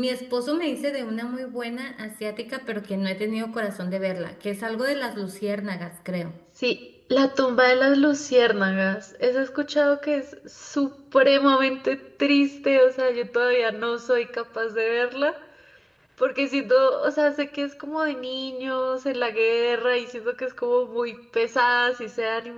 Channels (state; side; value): identical; both; correlation 1.00